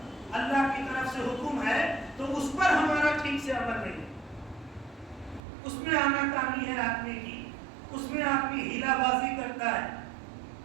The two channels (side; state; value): left; drops out; at 5.4 s